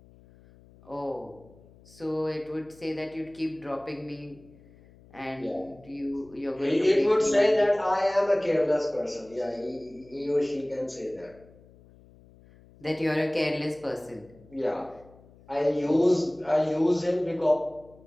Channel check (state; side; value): noise; left; hum, 25 dB below the sound